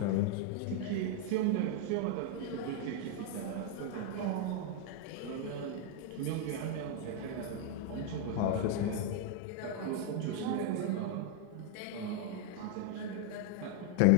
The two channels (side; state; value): both; different; correlation 0.00